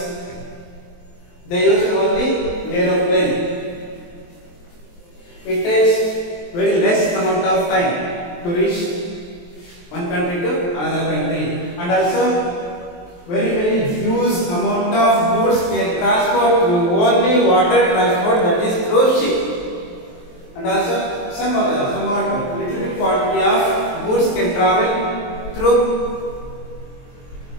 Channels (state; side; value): late; right; 23 ms